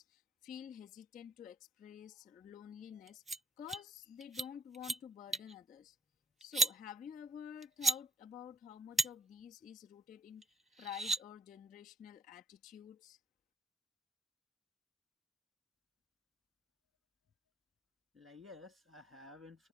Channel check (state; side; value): normal; both; correlation 0.69